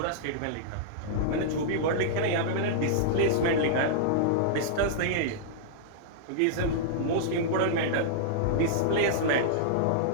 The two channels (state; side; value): different; both; correlation -0.02